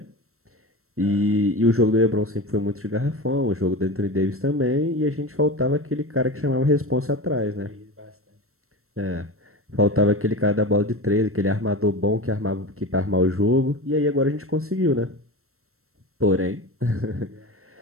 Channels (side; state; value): left; late; 0.63 ms